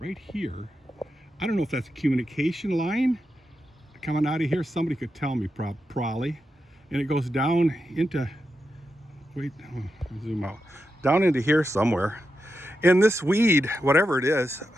here, I don't know if that's a communication line coming out of here. Somebody could tell me probably. And it goes down into, zoom out, down into here somewhere. And this weed, whatever it is,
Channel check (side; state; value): both; normal; correlation 0.88